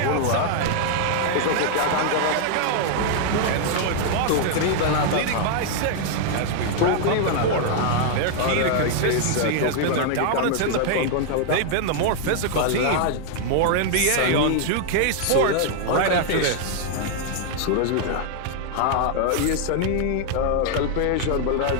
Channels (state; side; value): different; both; correlation 0.00